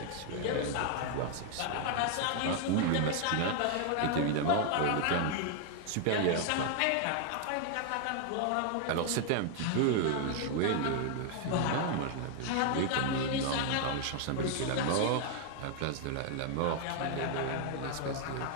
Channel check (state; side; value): different; both; correlation 0.00